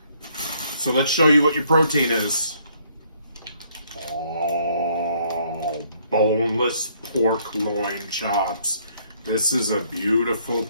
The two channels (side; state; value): both; inverted; correlation -0.66